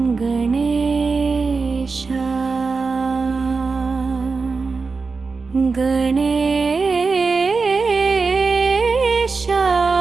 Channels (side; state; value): left; quieter; 4.5 dB